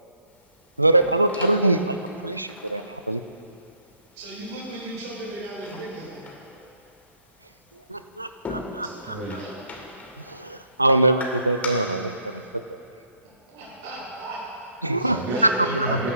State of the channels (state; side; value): inverted; both; correlation -0.68